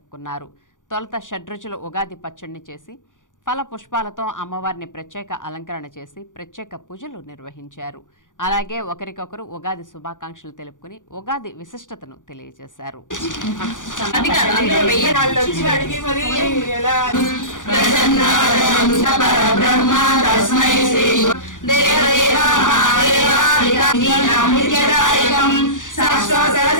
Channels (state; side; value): late; right; 0.87 ms